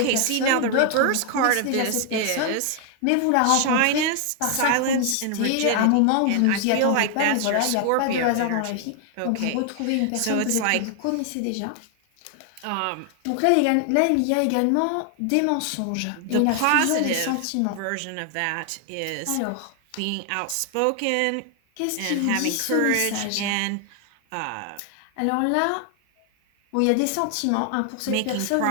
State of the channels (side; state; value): both; different; correlation 0.00